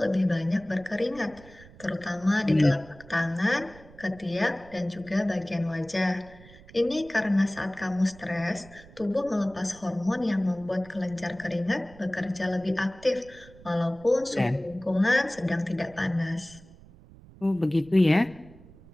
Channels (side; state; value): right; noise; rumble, 22 dB below the sound